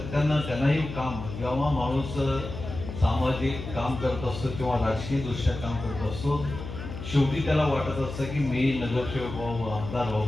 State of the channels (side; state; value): left; noise; hum, 9 dB below the sound